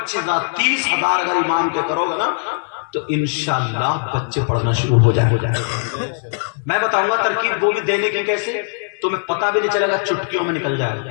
30,000 اگر امام کے کرو گے نا تو انشاءاللہ بچے پڑھنا شروع ہو جائیں. میں بتاؤں گا ترکیب, وہ بھی دینے کی کیسے, تمہیں پتہ بھی نہیں چلے گا, چٹکیوں میں نکل جائے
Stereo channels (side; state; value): right; silent; digital silence